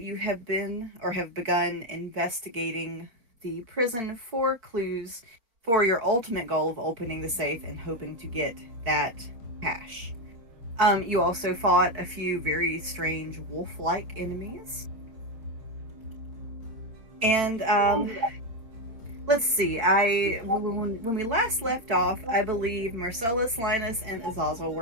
have been or have begun investigating the prison for clues for your ultimate goal of opening the safe and hoping to get that cash. You also fought a few very strange wolf-like enemies. And let's see. When we last left off, I believe Marcellus, Linus, and Azazel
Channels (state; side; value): late; left; 4.4 ms